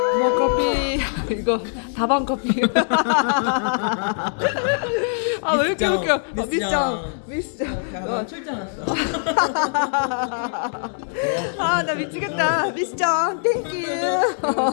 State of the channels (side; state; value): right; silent; 64 dB below the other